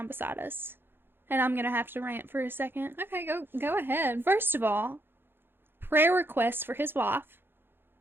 beside us. And I'm going to have to rant for a second. Okay, go ahead. First of all, prayer requests for his wife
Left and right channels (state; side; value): late; left; 0.10 ms